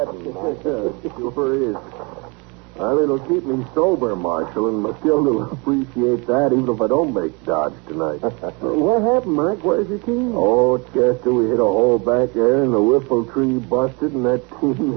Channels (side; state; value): left; quieter; 30.2 dB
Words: Mike. Sure is. Well, it'll keep me sober, Marshal, and Matilda will appreciate that even if I don't make Dodge tonight. What happened, Mike? Where's your team? Oh, Chester, we hit a hole back there, and the whiffle tree busted, and that